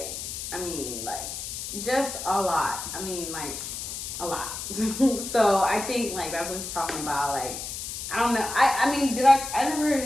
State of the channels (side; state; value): left; noise; hiss, 7 dB below the sound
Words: I mean, like, just a lot. I mean, like, a lot. So I think, like, that's what he's talking about. Like, I don't know. I mean, I never